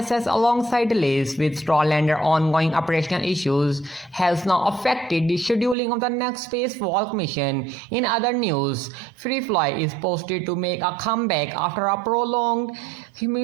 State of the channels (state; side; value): drops out; left; at 5.8 s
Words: alongside delays with Starliner ongoing operational issues has now affected the scheduling of the next spacewalk mission. In other news, FireFly is posted to make a comeback after a prolonged